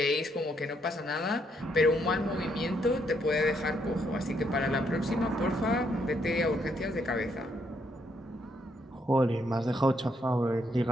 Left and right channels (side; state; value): both; normal; correlation 0.74